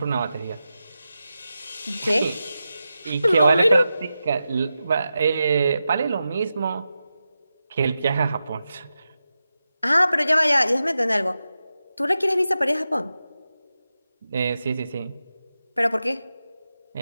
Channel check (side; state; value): both; inverted; correlation -0.91